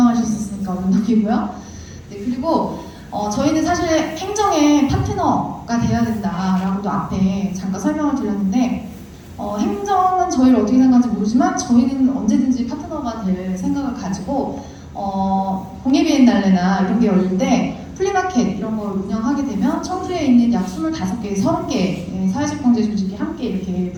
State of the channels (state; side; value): identical; both; correlation 1.00